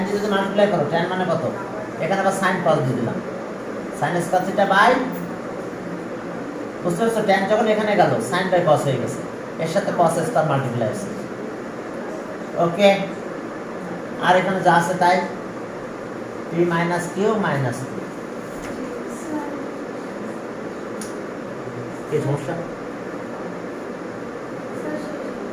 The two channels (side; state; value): both; identical; correlation 1.00